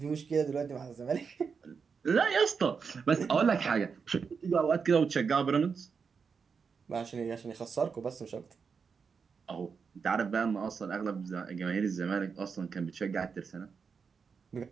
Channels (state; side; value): quieter; left; 5.7 dB